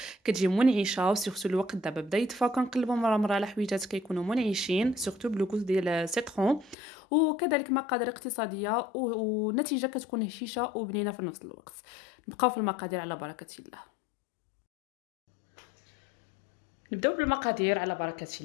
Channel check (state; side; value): drops out; right; at 6.8 s